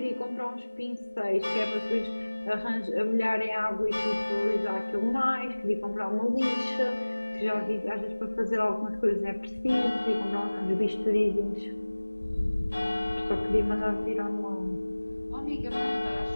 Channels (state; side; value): inverted; both; correlation -1.00